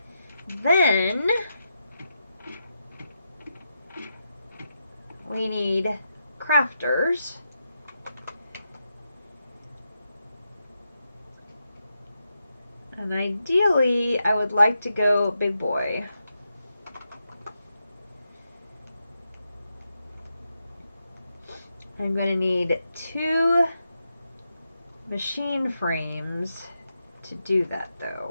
Then we need crafters. And ideally, I would like to go big boy. I'm going to need 2 machine frames to do that,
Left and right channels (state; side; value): inverted; both; correlation -0.86